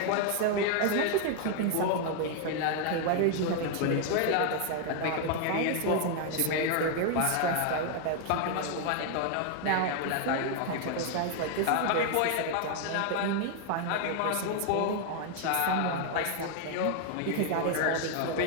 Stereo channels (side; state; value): both; different; correlation 0.00